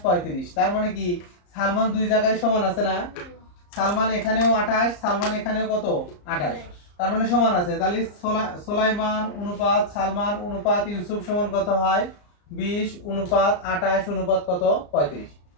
35, তার মানে কি সালমান দুই জায়গায় সমান আছে না? সালমান এখানেও 28, সালমান এখানেও কত 28, তার মানে সমান আছে। তাহলে সুলাইমান অনুপাত সালমান অনুপাত ইউসুফ সমান কত হয়? 20 অনুপাত 28 অনুপাত কত 35।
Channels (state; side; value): late; right; 34 ms